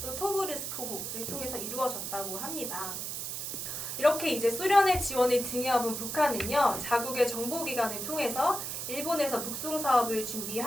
또 토브르스크호를 통해서 이루어졌다고 합니다. 이렇게 이제 소련의 지원을 등에 업은 북한은요, 자국의 정보기관을 통해서 일본에서 북송 사업을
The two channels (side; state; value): right; noise; hiss, 4 dB below the sound